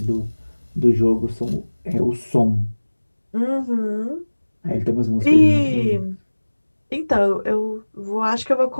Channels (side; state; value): both; inverted; correlation -1.00